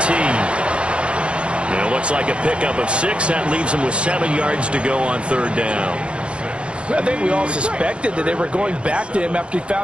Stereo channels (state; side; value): late; left; 0.057 ms